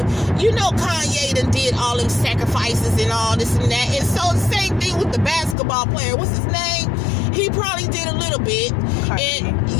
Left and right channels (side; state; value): right; drops out; at 5.6 s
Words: You know, Kanye done did all them sacrifices and all this and that. And so the same thing with the basketball player. What's his name? He probably did a little bit. Kyrie. And